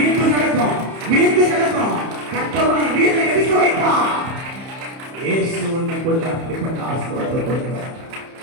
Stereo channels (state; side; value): late; left; 30 ms